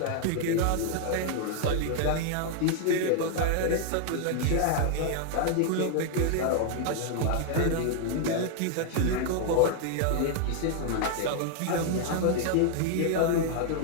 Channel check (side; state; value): both; different; correlation 0.00